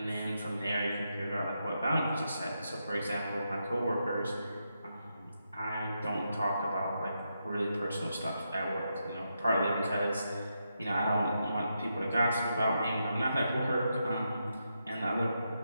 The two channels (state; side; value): inverted; both; correlation -0.84